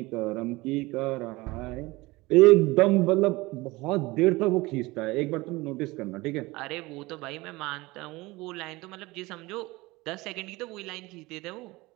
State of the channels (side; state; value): left; quieter; 21.5 dB